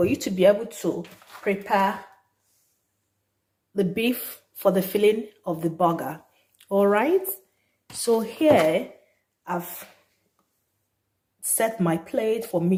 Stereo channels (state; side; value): identical; both; correlation 1.00